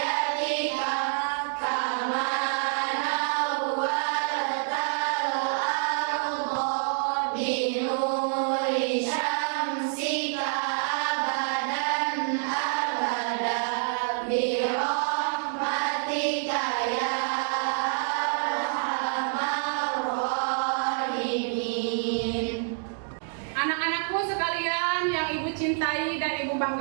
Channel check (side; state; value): left; silent; 60 dB below the other